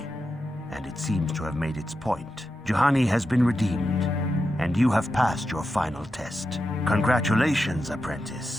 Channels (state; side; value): normal; both; correlation 0.89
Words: and it seems to have made its point. Juhani has been redeemed, and you have passed your final test. Congratulations,